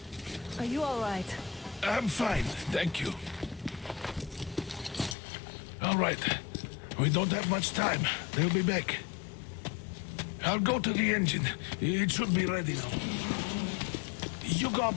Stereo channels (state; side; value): drops out; right; at 5.2 s